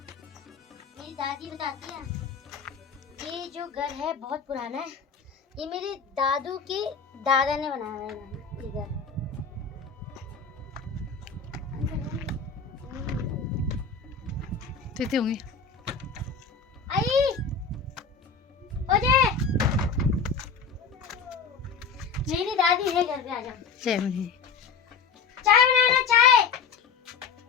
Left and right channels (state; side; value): quieter; right; 5.4 dB